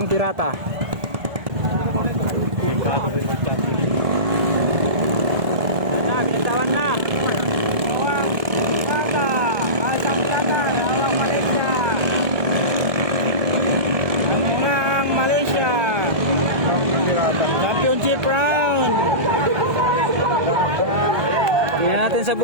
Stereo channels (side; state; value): left; late; 1.7 ms